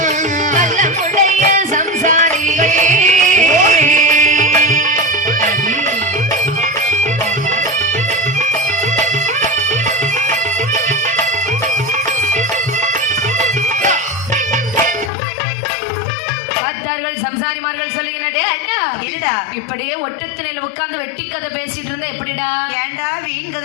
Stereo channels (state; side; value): drops out; right; at 15.1 s